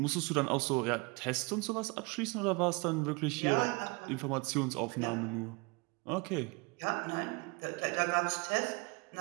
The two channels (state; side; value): quieter; left; 28.4 dB